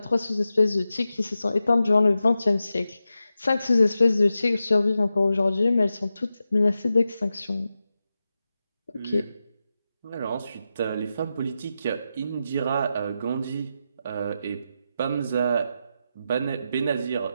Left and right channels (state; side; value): inverted; both; correlation -0.90